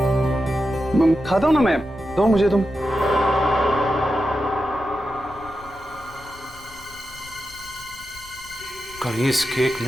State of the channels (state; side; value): noise; left; rumble, 22 dB below the sound